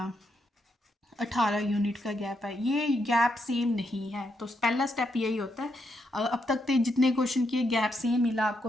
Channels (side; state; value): both; normal; correlation 0.80